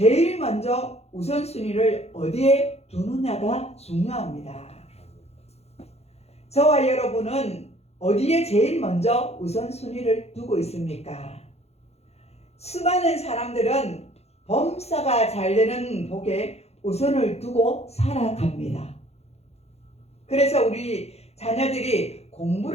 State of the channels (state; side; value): late; right; 0.31 ms